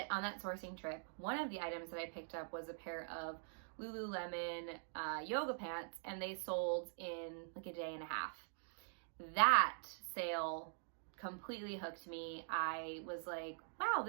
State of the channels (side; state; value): left; silent; digital silence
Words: on that sourcing trip, one of the items that I picked up was a pair of Lululemon yoga pants, and they sold in like a day and a half. That sale completely hooked me. I was like, wow,